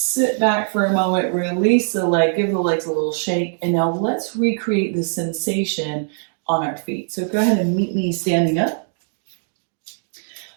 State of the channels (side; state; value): left; silent; digital silence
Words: back for a moment, release the leg, give the legs a little shake, and now let's recreate the sensation on our feet. So go ahead and meet me standing up.